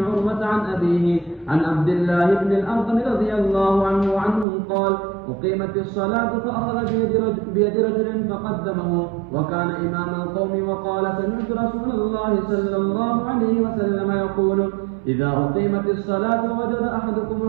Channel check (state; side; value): drops out; left; at 4.5 s